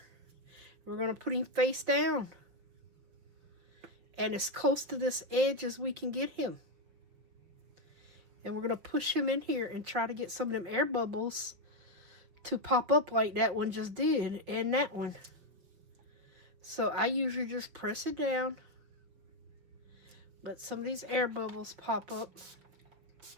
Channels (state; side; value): late; left; 5.7 ms